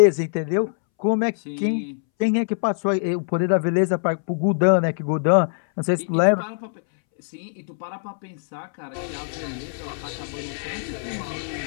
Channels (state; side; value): silent; right; 63 dB below the other